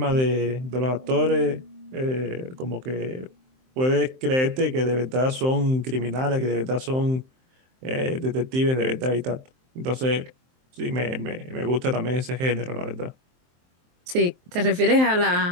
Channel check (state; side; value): late; left; 23 ms